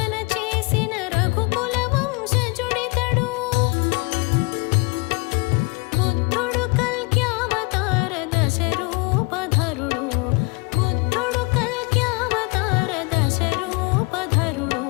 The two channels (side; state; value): right; quieter; 27.7 dB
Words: చేసిన రఘుకుల వంశజుడితడు. బుద్ధుడు కల్క్యావతార దశరూపధరుడు. బుద్ధుడు కల్క్యావతార దశరూపధరుడు.